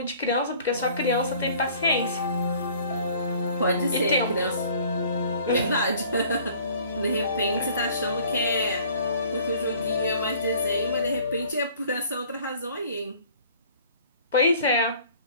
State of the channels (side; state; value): both; inverted; correlation -0.53